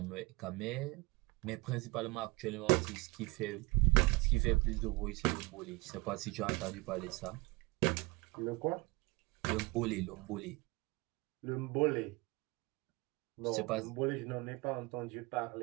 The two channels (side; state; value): left; quieter; 25.1 dB